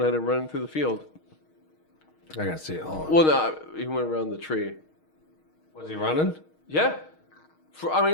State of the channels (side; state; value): right; late; 6.4 ms